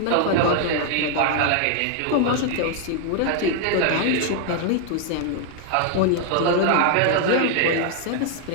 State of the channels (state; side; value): different; both; correlation 0.00